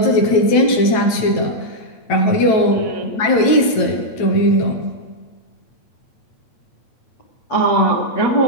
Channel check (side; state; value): right; late; 9.1 ms